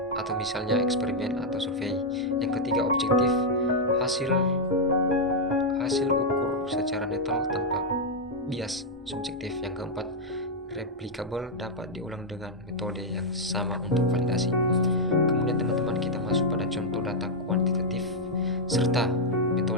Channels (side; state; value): both; normal; correlation -0.03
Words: atau misalnya eksperimen atau survei. Yang ketiga, objektif, hasil ukur secara netral tanpa bias subjektif. Yang keempat, replicable, dapat diulang dengan metode yang sama untuk validasi. Kemudian teman-teman, kita masuk pada contoh data kuantitatif serta